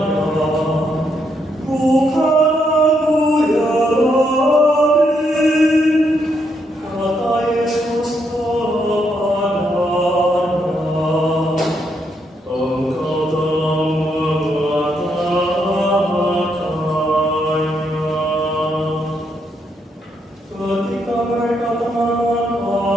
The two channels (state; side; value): normal; both; correlation 0.77